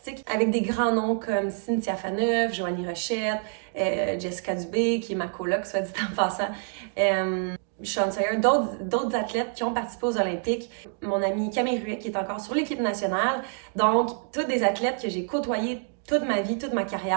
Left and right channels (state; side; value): silent; left; 60 dB below the other